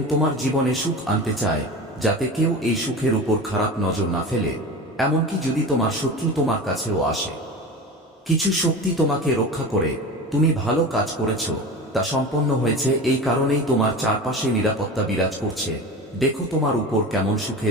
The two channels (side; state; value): both; normal; correlation 0.31